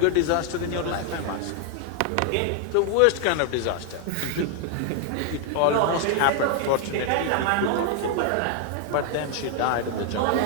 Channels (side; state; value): both; different; correlation 0.00